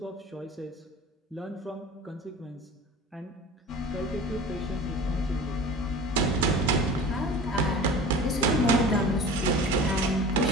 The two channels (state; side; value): normal; both; correlation 0.38